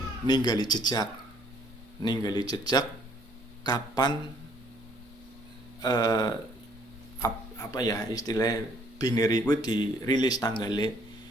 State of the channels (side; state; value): both; normal; correlation 0.63